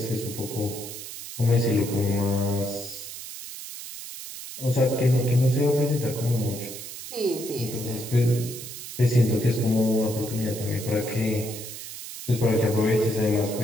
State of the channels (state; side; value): noise; right; hiss, 11 dB below the sound